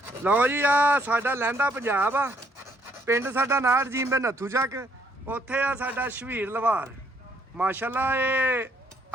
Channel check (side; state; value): both; normal; correlation 0.68